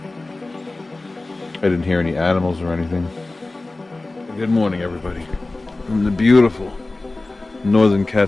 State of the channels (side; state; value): right; quieter; 3.1 dB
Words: I didn't hear any animals or anything. Good morning, everybody. From the beautiful northern